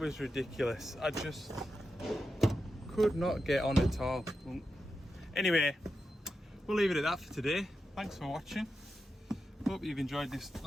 ridiculous. I just could not get on at all. Anyway, we'll leave it at that for today. Thanks for watching. Hope you've enjoyed this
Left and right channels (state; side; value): normal; both; correlation 0.89